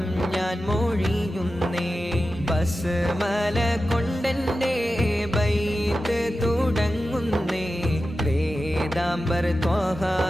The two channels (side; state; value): both; normal; correlation 0.93